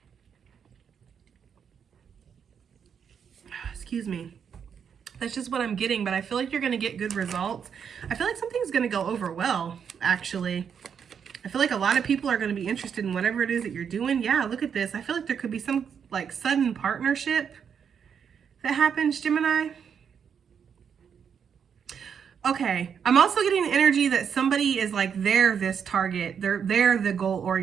Excuse me. That's just what I'm getting, but I feel like you're going to get good results. I feel like something's going to go over well, actually. I feel like a lot of people are going to be interested in whatever it is that you're doing. Yeah, look at this. I feel like there could be some like sudden partnership that happens, Gemini. Okay, I'm also getting the energy that somebody is like, they're this target. They're the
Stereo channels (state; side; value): quieter; left; 7.4 dB